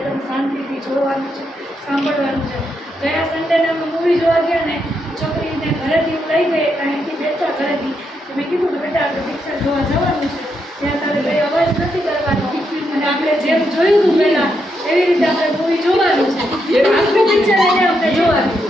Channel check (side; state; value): both; normal; correlation 0.81